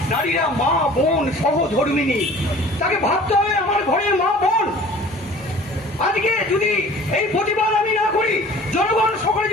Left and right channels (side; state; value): both; normal; correlation 0.46